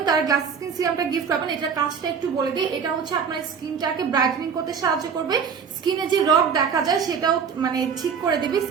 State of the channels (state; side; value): quieter; left; 6.6 dB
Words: তারা গ্লাস স্কিন সিরামটা গিফট পাবেন। এটার কাজটা একটু বলে দিই, এটা হচ্ছে আপনার স্কিনটাকে ব্রাইটেনিং করতে সাহায্য করবে। স্কিনে যে রগ দেখা যায় সেটাও মানে ঠিক করে দেবে